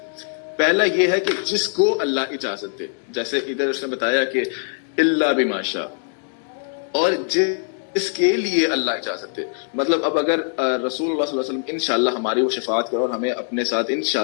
پہلا یہ ہے کہ جس کو اللہ اجازت دے، جیسے ادھر اس نے بتایا کہ الا بما شاء، اور جس کے لیے اللہ اجازت دے. مطلب اب اگر رسول اللہ صلی اللہ علیہ وسلم انشاءاللہ ہماری وہ شفاعت کرو اور ہمیں اپنے ساتھ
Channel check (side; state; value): right; silent; digital silence